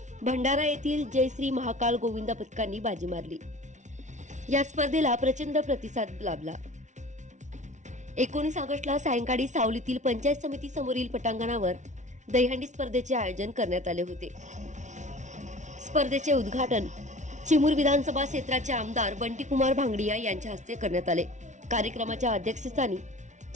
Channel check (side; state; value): left; late; 0.35 ms